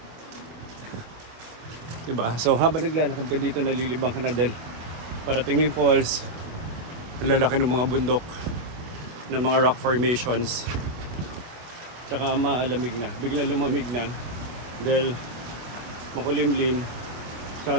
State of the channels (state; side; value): late; left; 25 ms